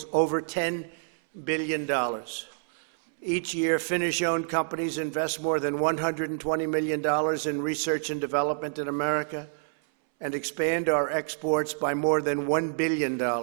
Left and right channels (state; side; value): silent; left; 60 dB below the other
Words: over $10 billion. Each year, Finnish-owned companies invest more than $120 million in research and development in America and expand our exports by more than $1 billion.